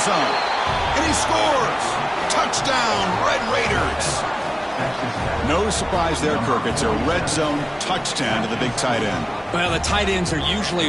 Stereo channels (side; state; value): both; identical; correlation 1.00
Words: And he scores. Touchdown, Red Raiders. No surprise there, Kirk. It's a red zone touchdown to the big tight end. Well, the tight ends are